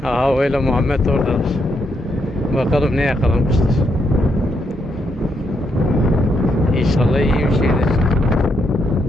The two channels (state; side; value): normal; both; correlation 0.78